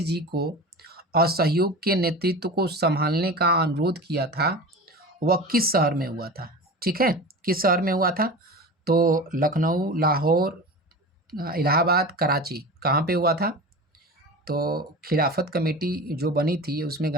जी को असहयोग के नेतृत्व को संभालने का अनुरोध किया था, वह किस शहर में हुआ था? ठीक है, किस शहर में हुआ था? तो लखनऊ, लाहौर, इलाहाबाद, कराची, कहाँ पे हुआ था? तो खिलाफत कमेटी जो बनी थी उसमें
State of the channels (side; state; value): both; normal; correlation 0.32